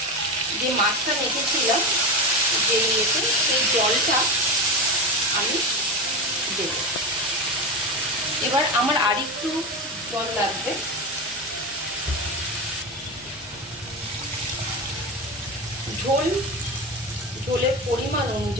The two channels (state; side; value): normal; both; correlation 0.20